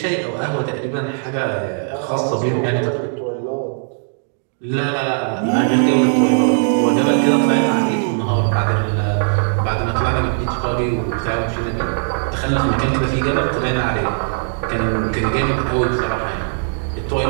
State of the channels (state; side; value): silent; left; digital silence